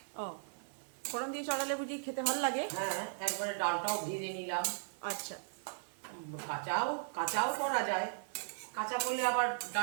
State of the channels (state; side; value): silent; left; 53 dB below the other